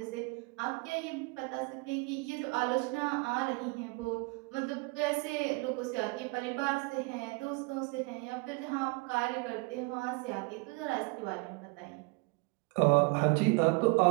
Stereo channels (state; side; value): quieter; left; 28.6 dB